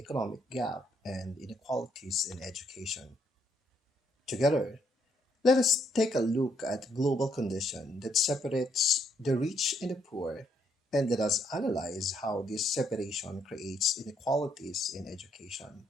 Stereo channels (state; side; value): normal; both; correlation 0.73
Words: gap and inequalities in education. Together, let us take a look at global condition that separates the rich and the poor, and let us analyze how this separation creates inequalities in education,